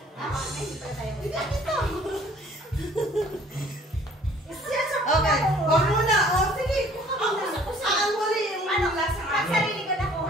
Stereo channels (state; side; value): normal; both; correlation 0.55